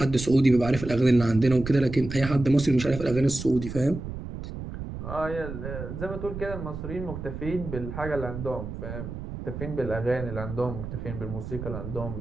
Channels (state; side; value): noise; right; rumble, 8 dB below the sound